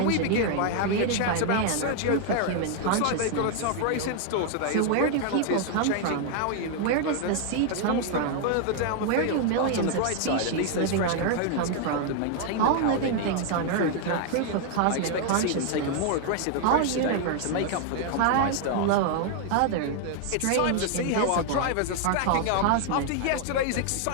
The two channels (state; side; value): different; both; correlation 0.00